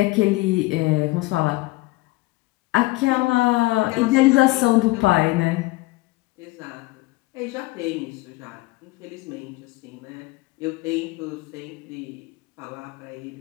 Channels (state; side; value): quieter; right; 20.9 dB